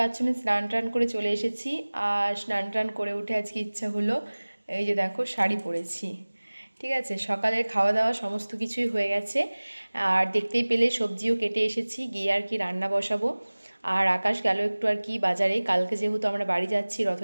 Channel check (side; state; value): both; inverted; correlation -1.00